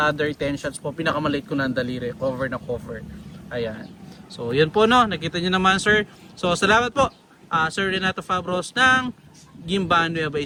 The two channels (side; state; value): both; identical; correlation 1.00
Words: 10 shots po, pinakamaliit ko ng daliri, cover na cover. Ayan. So yun po, no, nakita nyo naman sir. So salamat po Sir Renato Fabros ng Gimban, Nueva